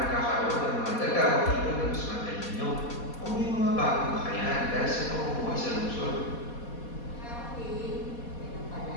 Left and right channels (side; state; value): right; late; 4.2 ms